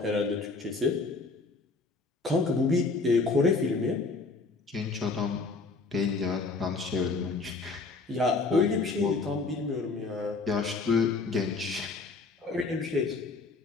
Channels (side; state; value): right; quieter; 3.9 dB